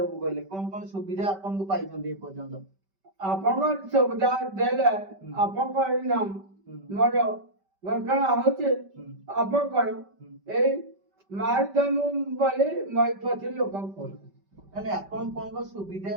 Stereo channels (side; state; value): left; late; 5.2 ms